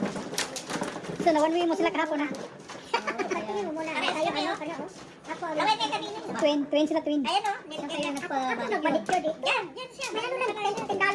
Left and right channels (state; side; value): identical; both; correlation 1.00